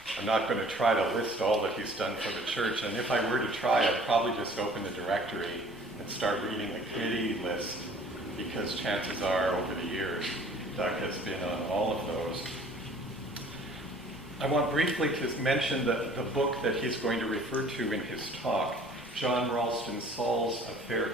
not going to try to list all that he's done for the church, and if I were to try, I'd probably just open the directory and start reading the committee list, because chances are, over the years, Doug has been on all of those. I want briefly to mention the book that he's going to refer to in his talk, John Ralston, Saul's A Fair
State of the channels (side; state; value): both; normal; correlation 0.52